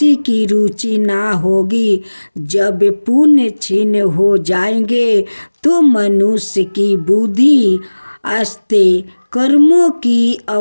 की रुचि ना होगी। जब पुण्य क्षीण हो जाएंगे तो मनुष्य की बुद्धि अस्ते कर्मों की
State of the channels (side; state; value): both; inverted; correlation -1.00